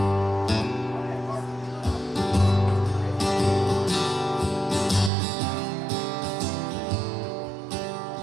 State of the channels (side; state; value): left; drops out; at 5.1 s